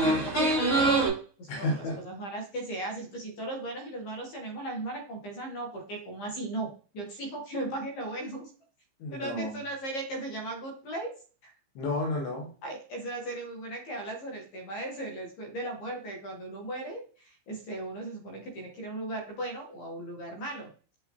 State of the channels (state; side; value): late; right; 15 ms